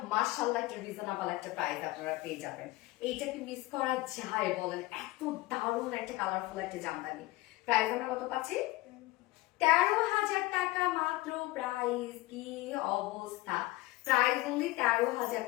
মাশাআল্লাহ একটা রিজনেবল একটা প্রাইস আপনারা পেয়ে যাবেন। এইটাকে মিস করা যায় বলেন? এত দারুণ একটা কালারফুল একটা জামদানি। প্রাইস আমরা কত পাচ্ছি? 13,000 টাকা মাত্র প্রাইস। কি অবস্থা! প্রাইস অনলি 13,000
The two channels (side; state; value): right; quieter; 19.2 dB